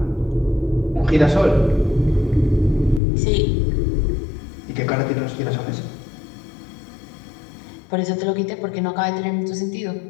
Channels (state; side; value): drops out; right; at 3.0 s